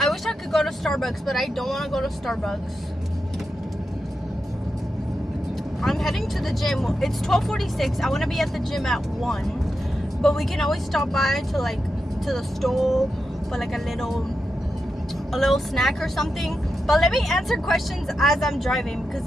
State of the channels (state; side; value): normal; both; correlation 0.88